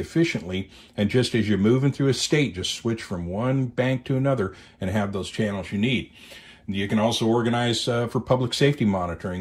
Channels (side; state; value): both; identical; correlation 1.00